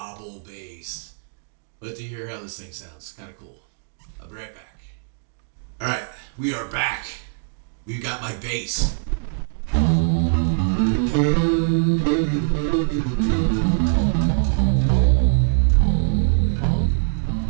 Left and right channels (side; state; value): left; silent; digital silence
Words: bass. Let to hear how this thing sounds. Kind of cool. I'll be right back. Alright, we are back. We've got my bass.